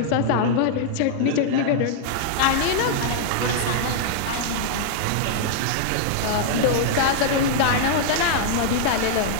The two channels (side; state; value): both; different; correlation -0.01